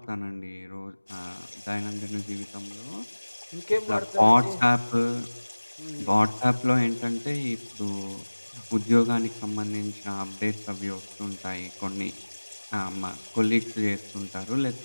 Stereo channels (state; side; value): inverted; both; correlation -1.00